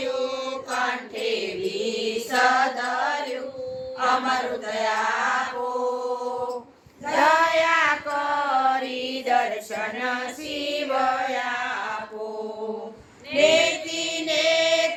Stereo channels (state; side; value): identical; both; correlation 1.00